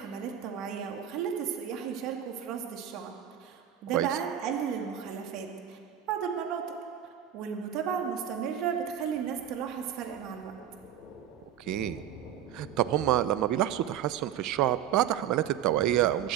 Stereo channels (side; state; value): left; quieter; 10.0 dB